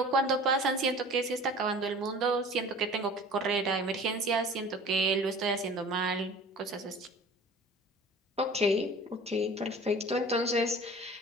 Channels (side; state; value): both; normal; correlation 0.43